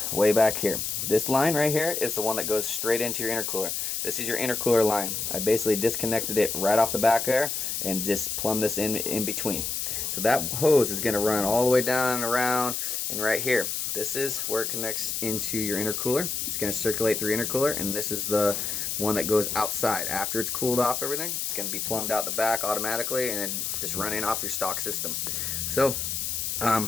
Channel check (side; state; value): left; noise; hiss, 2 dB below the sound